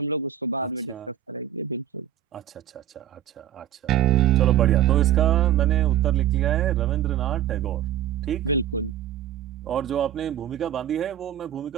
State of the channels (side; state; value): left; quieter; 11.0 dB